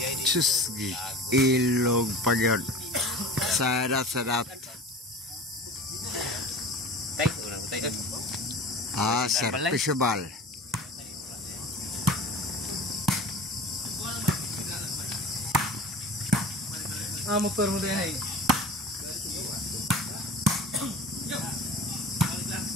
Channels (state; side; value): normal; both; correlation 0.37